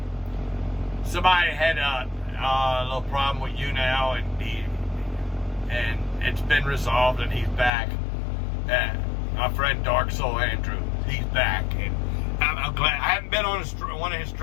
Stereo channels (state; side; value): drops out; right; at 7.7 s